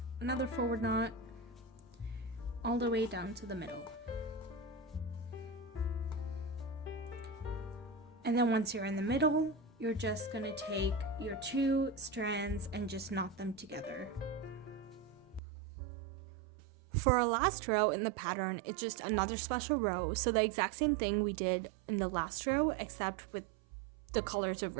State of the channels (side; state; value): left; drops out; at 15.4 s